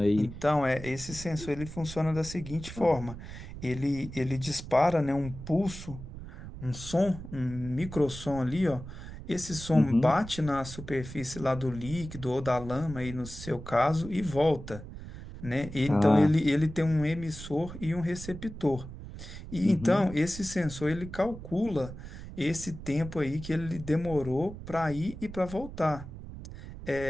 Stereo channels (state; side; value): noise; right; rumble, 12 dB below the sound